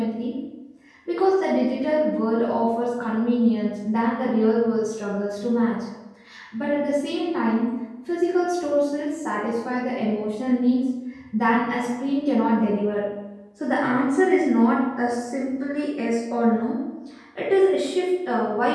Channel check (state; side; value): identical; both; correlation 1.00